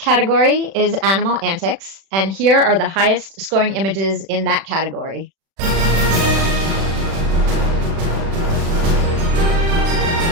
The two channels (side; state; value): left; late; 36 ms